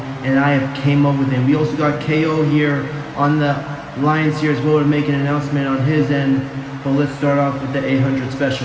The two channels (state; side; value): identical; both; correlation 1.00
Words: and I have came up with it. We also got KO here on the lines here as well to make an announcement on his end, but let's start off with the 800